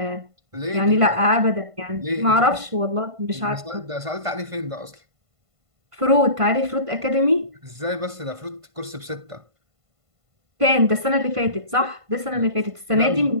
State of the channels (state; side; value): late; left; 1.5 ms